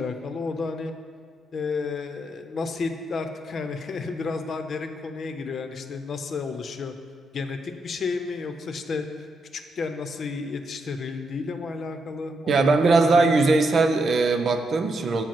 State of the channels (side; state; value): both; normal; correlation 0.81